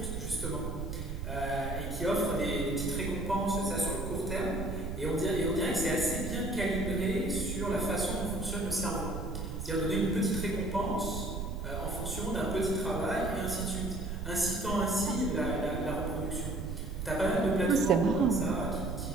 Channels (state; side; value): noise; right; rumble, 5 dB below the sound